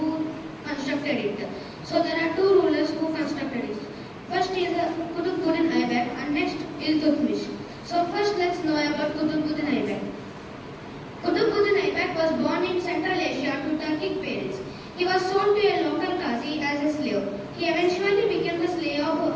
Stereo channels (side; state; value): both; identical; correlation 1.00